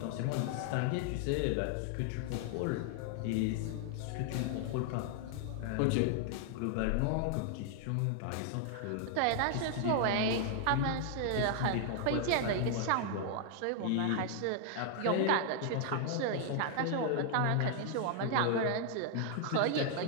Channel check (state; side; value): different; both; correlation 0.00